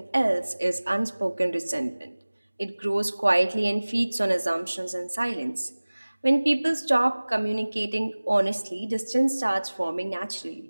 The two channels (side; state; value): both; inverted; correlation -1.00